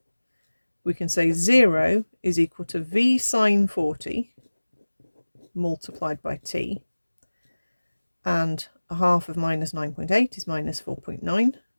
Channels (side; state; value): both; inverted; correlation -1.00